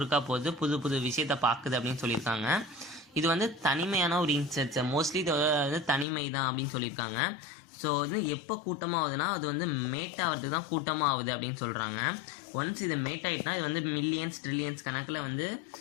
போகுது, புது புது விஷயத்தை பார்க்குது அப்படின்னு சொல்லியிருக்காங்க. இது வந்து தனிமையான ஒரு இன்செக்ட்ஸ், மோஸ்ட்லி இது வந்து தனிமை தான் அப்படின்னு சொல்லியிருக்காங்க. ஸோ அது எப்போ கூட்டமாகுதுன்னா அது வந்து மேட் ஆகிறதுக்கு தான் கூட்டமாக ஆகுது அப்படின்னு சொல்கிறாங்க. ஒன்ஸ் இது மேட் ஆகிட்டுனா இது வந்து மில்லியன்ஸ் ட்ரில்லியன்ஸ் கணக்கில் வந்து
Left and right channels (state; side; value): drops out; right; at 6.1 s